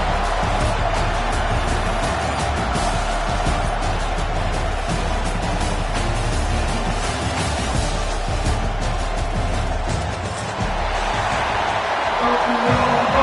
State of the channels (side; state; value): both; identical; correlation 1.00